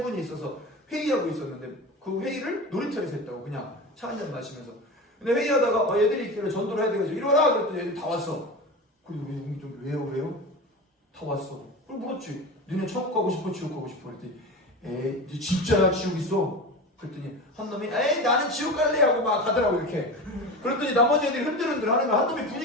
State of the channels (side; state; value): both; normal; correlation 0.28